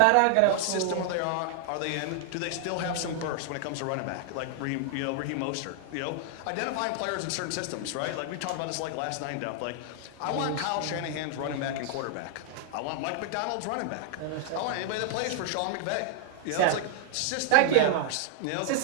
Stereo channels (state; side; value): different; both; correlation 0.00